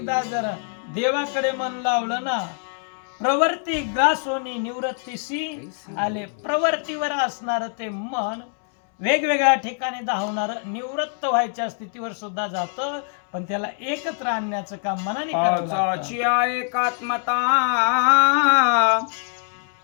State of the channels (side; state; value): right; silent; 56 dB below the other